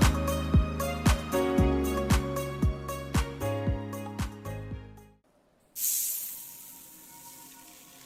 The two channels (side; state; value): both; identical; correlation 1.00